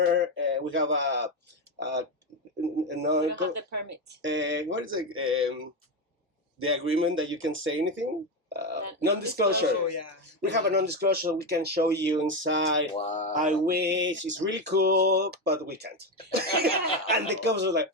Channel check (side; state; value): both; normal; correlation 0.12